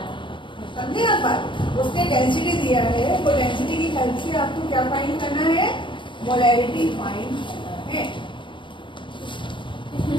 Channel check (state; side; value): late; right; 0.24 ms